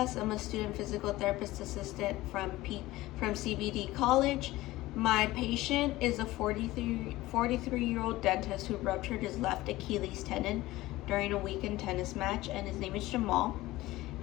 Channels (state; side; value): quieter; right; 17.8 dB